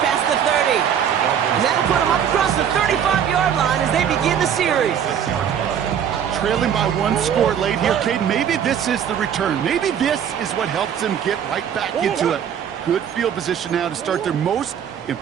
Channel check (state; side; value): quieter; left; 8.7 dB